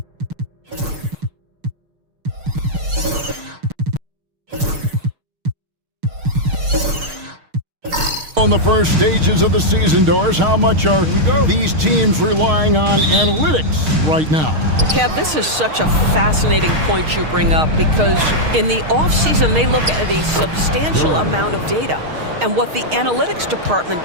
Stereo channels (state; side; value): late; left; 6.5 ms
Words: On the first stages of the season, Doris, how much are these teams relying on analytics right now? Kev, this is such a fascinating point you bring up because in the offseason, they look at a substantial amount of data. And what the analytics department